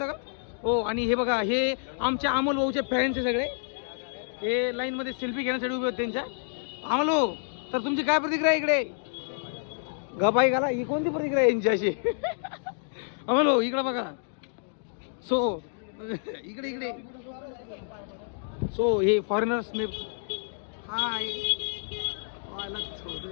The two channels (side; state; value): right; silent; digital silence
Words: का? हो. आणि हे बघा, हे आमच्या अमोल भाऊचे फॅन्स आहे सगळे. हे लाईन मध्ये सेल्फी घेण्यासाठी उभे होते त्यांच्या. अमोल भाऊ, तर तुमची काय प्रतिक्रिया इकडे? गपाई घाला, ही कोणती प्रतिक्रिया यांची अशी? अमोल भाऊ इकडे बघा. सो इकडे इकडे सो हे फॉरेनर्स ने हाय